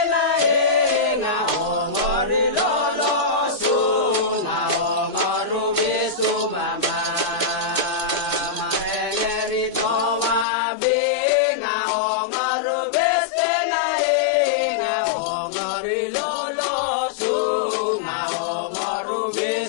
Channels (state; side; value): drops out; right; at 10.5 s